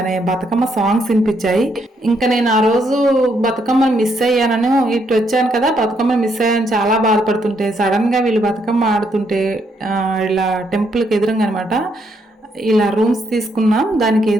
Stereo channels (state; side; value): normal; both; correlation 0.74